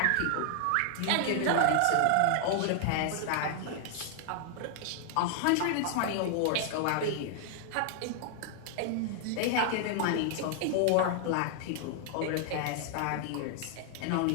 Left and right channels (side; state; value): both; different; correlation 0.00